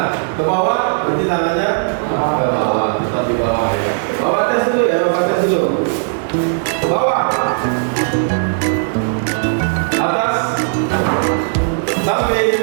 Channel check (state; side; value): silent; left; digital silence